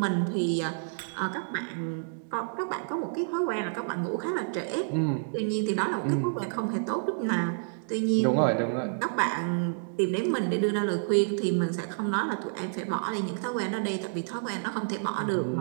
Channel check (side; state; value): left; silent; digital silence